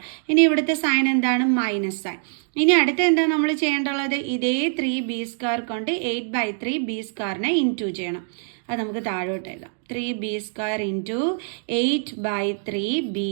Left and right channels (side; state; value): left; silent; digital silence